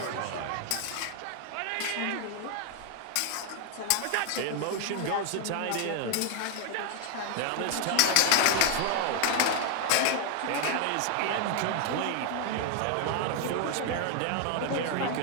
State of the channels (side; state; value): both; different; correlation 0.00